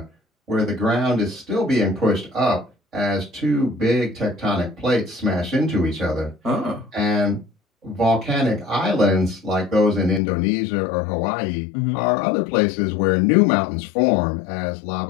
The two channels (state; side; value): drops out; right; at 10.2 s